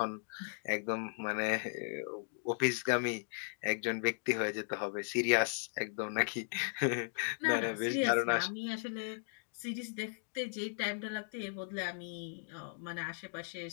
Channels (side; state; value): right; silent; digital silence